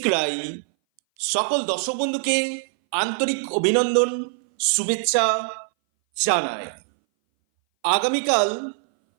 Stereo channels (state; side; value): silent; left; 60 dB below the other